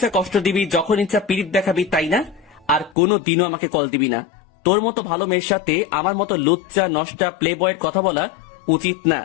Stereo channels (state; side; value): drops out; right; at 3.0 s